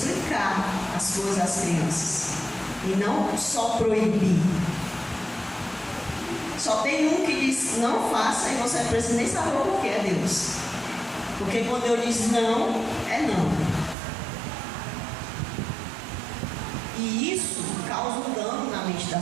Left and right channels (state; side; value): drops out; left; at 14.0 s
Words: as coisas às crianças e não só proibir. Só tem um que diz não faça e você não precisa nem saber o que é Deus. Porque quando eu diz não, é não. E isso causa um dano na mente